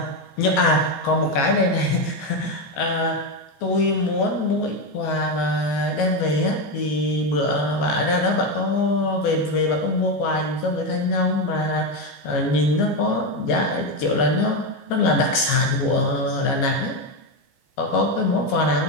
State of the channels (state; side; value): late; right; 14 ms